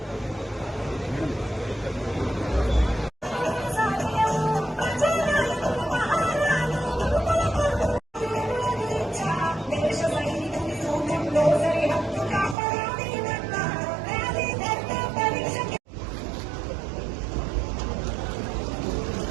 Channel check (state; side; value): drops out; left; at 12.6 s